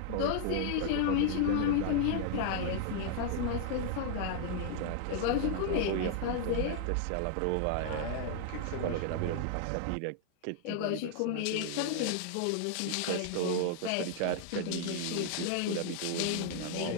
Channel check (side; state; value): both; different; correlation -0.01